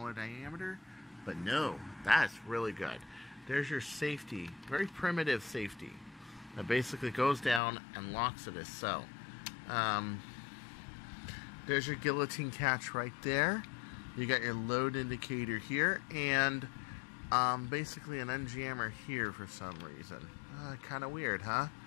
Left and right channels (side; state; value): right; drops out; at 7.6 s